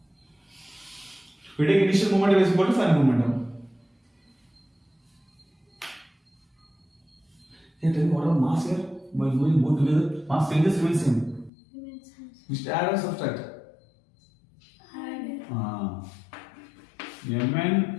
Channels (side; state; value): right; drops out; at 11.5 s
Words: We take initial momentum is equal to final momentum. Hey, tell me what about mass here? By moving both together, mass changes remains same. We should add or subtract? Add. Mn,